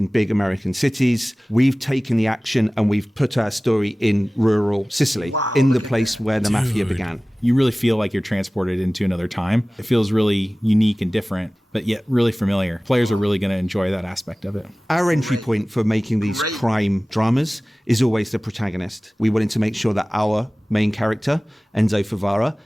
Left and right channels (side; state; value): both; normal; correlation 0.98